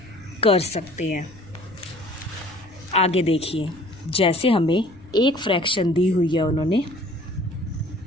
कर सकते हैं। आगे देखिए, जैसे हमें एक फ्रैक्शन दी हुई है उन्होंने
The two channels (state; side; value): noise; left; rumble, 23 dB below the sound